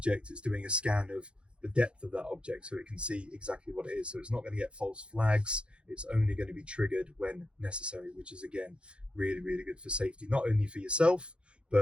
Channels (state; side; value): late; left; 0.057 ms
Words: it's doing a scan of the depth of that object so it can see exactly what it is. So it's not going to get false flags. It's only going to be triggered when necessary, which is again really good for safety, not only for yourself